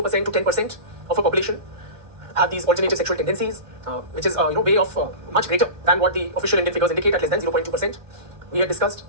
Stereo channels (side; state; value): left; late; 1.5 ms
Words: to 10% of a population have these alternative sexual tendencies, which is way of much greater than what the official Indian figures indicate, at less than 0.2%. We had discussed